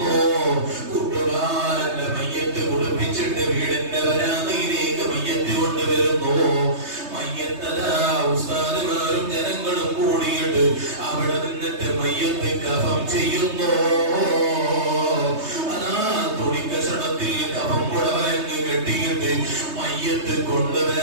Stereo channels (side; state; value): left; late; 3.2 ms